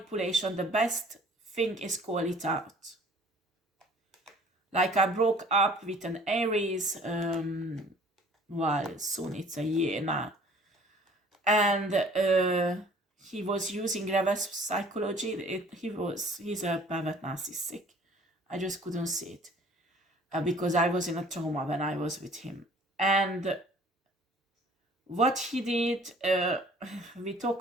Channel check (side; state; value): both; normal; correlation 0.52